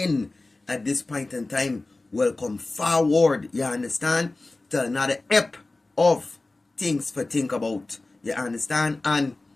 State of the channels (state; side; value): quieter; right; 3.1 dB